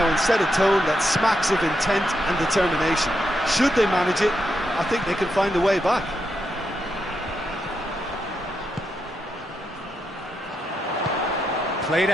and set a tone that smacks of intent and determination. Should they manage it, I think they can find a way back. Played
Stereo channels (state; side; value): normal; both; correlation 0.83